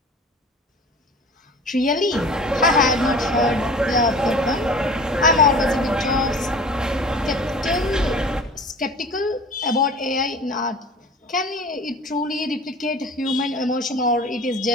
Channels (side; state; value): both; normal; correlation 0.42